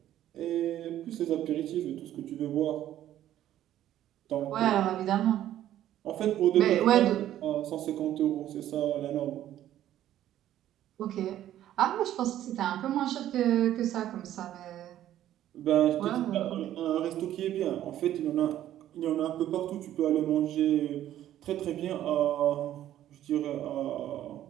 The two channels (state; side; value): quieter; left; 12.3 dB